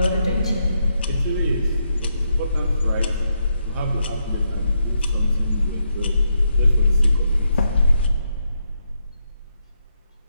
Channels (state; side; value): inverted; both; correlation -0.81